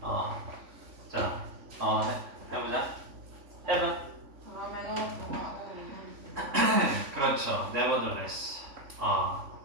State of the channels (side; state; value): left; late; 3.5 ms